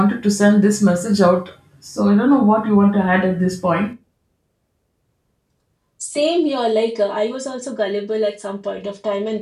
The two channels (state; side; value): identical; both; correlation 1.00